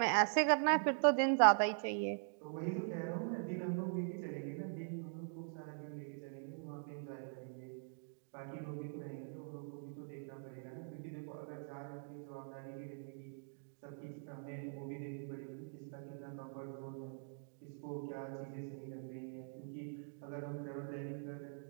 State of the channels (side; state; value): left; silent; digital silence